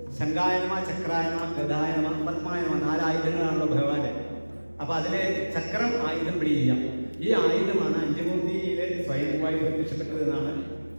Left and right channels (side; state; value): both; inverted; correlation -1.00